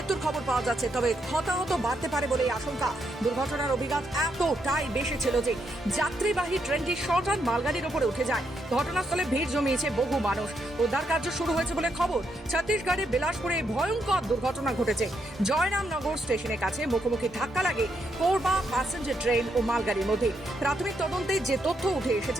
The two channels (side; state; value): both; normal; correlation 0.79